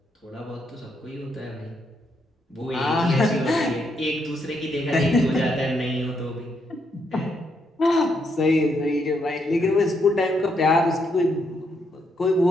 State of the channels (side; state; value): both; normal; correlation 0.77